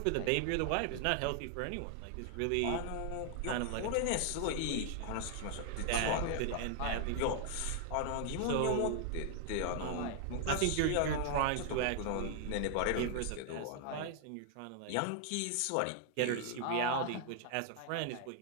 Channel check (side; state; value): both; different; correlation 0.00